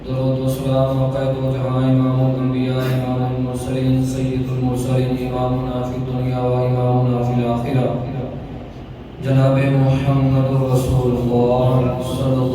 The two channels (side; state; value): both; identical; correlation 1.00